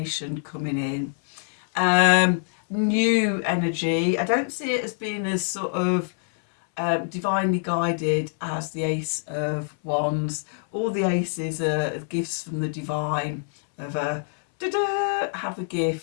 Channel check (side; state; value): right; silent; 62 dB below the other